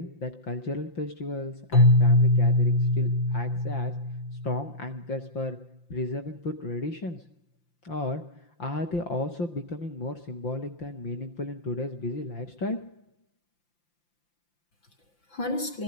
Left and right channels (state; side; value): late; right; 5.8 ms